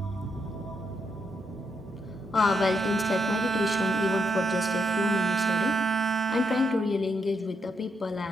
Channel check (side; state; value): both; normal; correlation 0.79